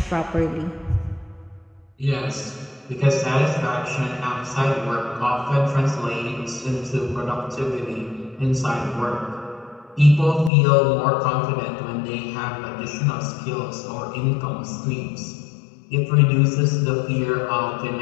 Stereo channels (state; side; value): drops out; right; at 10.5 s